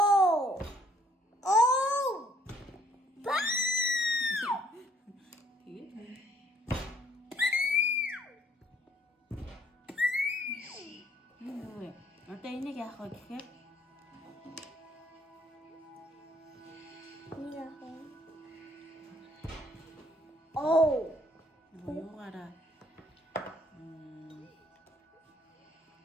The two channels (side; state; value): both; normal; correlation 0.63